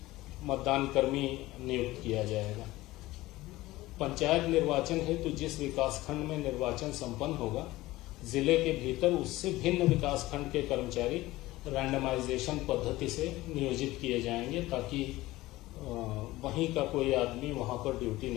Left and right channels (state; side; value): quieter; right; 18.1 dB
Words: मतदान कर्मी नियुक्त किया जाएगा। पंचायत निर्वाचन हेतु जिस विकासखंड में निर्वाचन संपन्न होगा, जिले के भीतर उससे भिन्न विकासखंड के कर्मचारी रैंडमाइजेशन पद्धति से नियोजित किए जाएंगे, ताकि वहीं का कोई आदमी वहां पर ड्यूटी